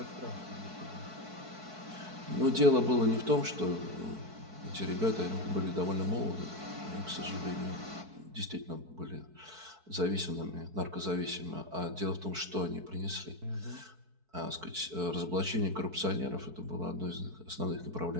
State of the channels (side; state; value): left; late; 4.6 ms